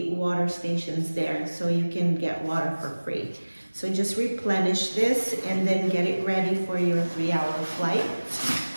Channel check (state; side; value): inverted; both; correlation -1.00